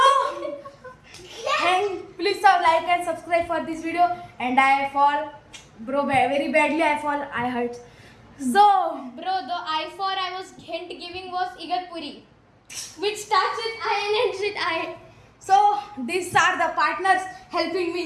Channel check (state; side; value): identical; both; correlation 1.00